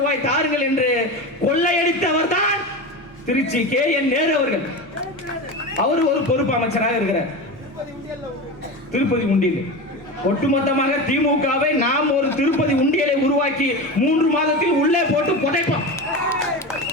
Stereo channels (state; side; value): normal; both; correlation 0.24